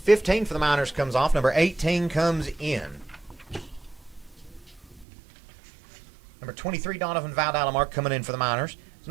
for the Miners comes off, number 18 comes in. Number 23, Donovan Valdalamark coming in for the Miners.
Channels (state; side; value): drops out; left; at 5.1 s